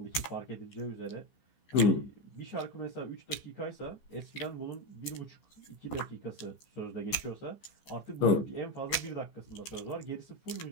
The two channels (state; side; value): late; right; 14 ms